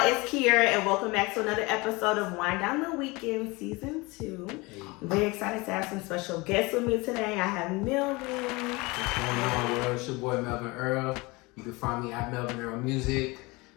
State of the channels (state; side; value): quieter; right; 24.5 dB